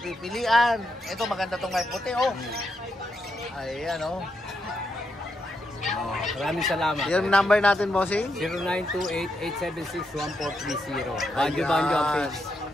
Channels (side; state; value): both; normal; correlation 0.82